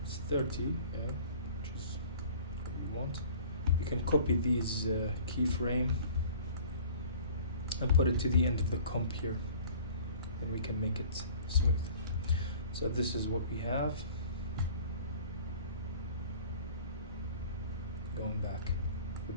it's 30, yeah, which is what you want. You can copy these keyframe and put it to the end of the comp here, and we can make it smooth. So this is what we have. Going back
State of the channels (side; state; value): both; inverted; correlation -0.47